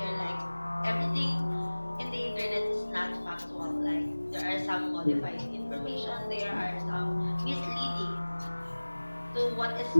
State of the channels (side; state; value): both; inverted; correlation -1.00